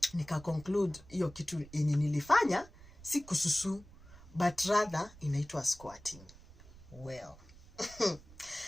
nika conclude hiyo kitu yenye nilifanya si kususu, but rather inaitwa squatting. Well,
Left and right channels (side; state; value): right; noise; rumble, 21 dB below the sound